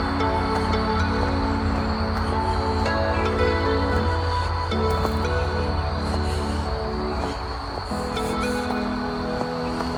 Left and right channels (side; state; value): both; identical; correlation 1.00